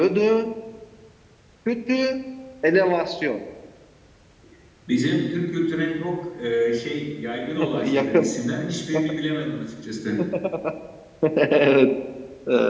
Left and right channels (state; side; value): identical; both; correlation 1.00